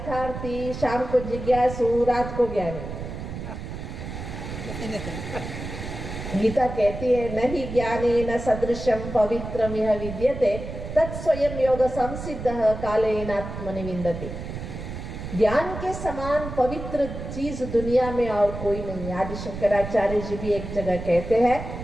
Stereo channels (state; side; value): noise; right; rumble, 8 dB below the sound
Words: शाम को जिज्ञासु, रात को ज्ञानी? गीता कहती है नहीं ज्ञाने न सदृशम पवित्रम यह विद्यते तत्स्वयं योग संसिद्धः कालेन आत्मनि विन्दति। ज्ञान के समान पवित्र चीज दुनिया में और कोई नहीं। आदि शंकराचार्य जी भी एक जगह कहते हैं